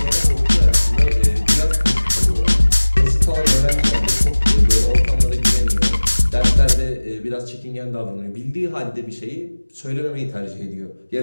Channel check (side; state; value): both; inverted; correlation -1.00